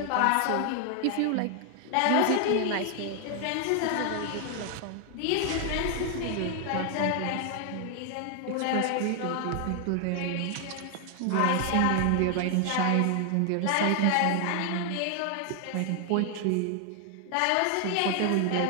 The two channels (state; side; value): different; both; correlation 0.00